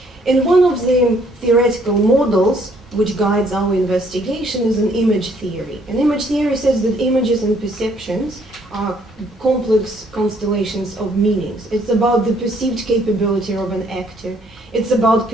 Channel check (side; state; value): both; normal; correlation 0.65